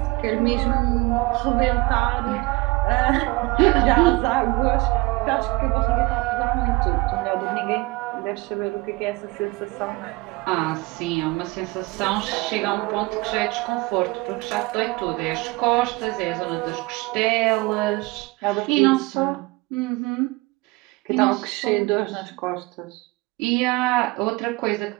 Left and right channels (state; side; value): quieter; left; 23.3 dB